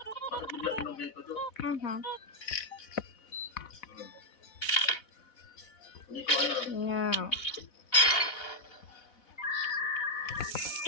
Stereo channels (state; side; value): late; right; 4.1 ms